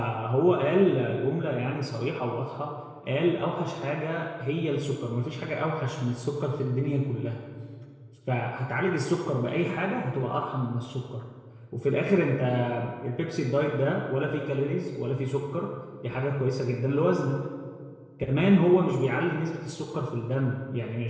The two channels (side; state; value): both; identical; correlation 1.00